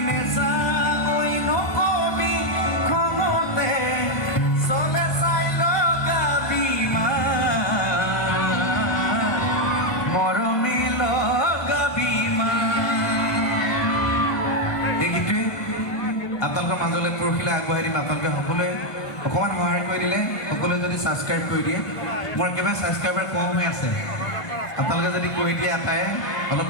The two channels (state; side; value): late; right; 1.5 ms